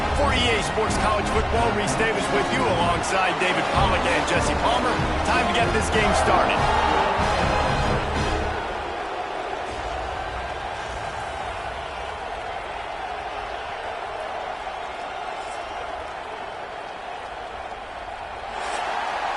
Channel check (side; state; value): both; identical; correlation 1.00